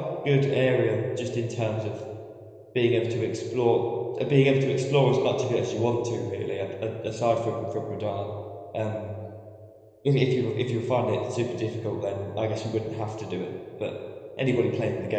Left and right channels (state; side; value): identical; both; correlation 1.00